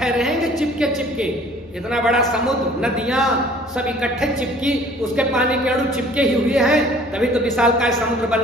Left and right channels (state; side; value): normal; both; correlation 0.52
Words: रहेंगे चिपके। इतना बड़ा समुद्र, नदियां सब इकट्ठे चिपकी, उसके पानी के अणु चिपके ही हुए हैं, तभी तो विशालकाय समुद्र बन